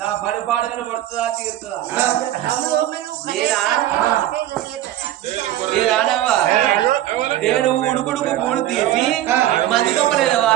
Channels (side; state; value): left; quieter; 13.3 dB